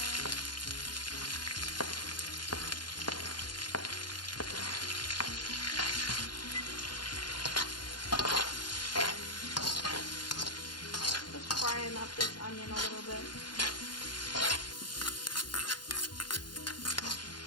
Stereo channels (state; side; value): late; right; 0.71 ms